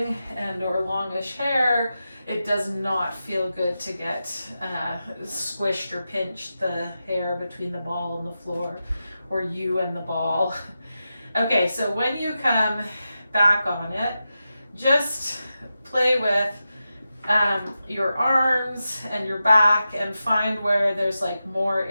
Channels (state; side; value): inverted; both; correlation -0.91